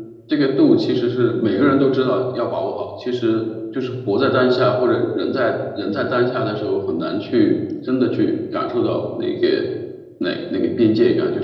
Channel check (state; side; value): identical; both; correlation 1.00